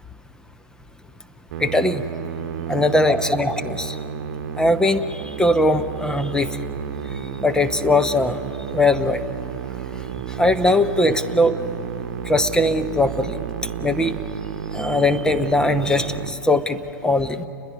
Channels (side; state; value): both; normal; correlation 0.58